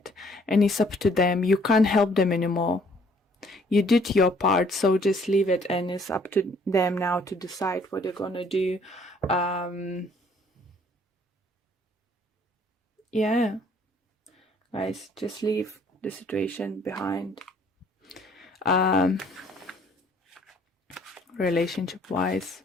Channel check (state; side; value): normal; both; correlation 0.61